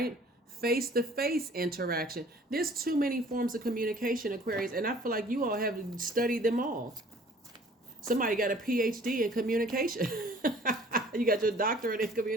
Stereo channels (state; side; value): normal; both; correlation 0.53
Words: Face to face interaction. There's too many forms of communication, Aquarius, and I feel like you all have studied them all. Somebody got a PhD in communication. You got your doctorate in